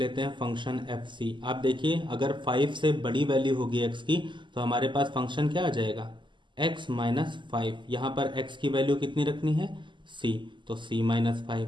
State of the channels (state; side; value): late; left; 0.23 ms